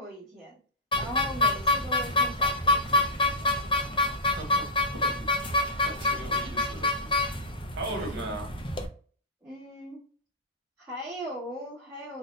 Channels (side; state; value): both; normal; correlation -0.14